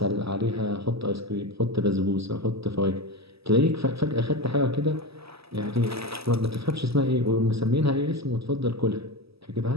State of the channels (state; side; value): late; left; 0.77 ms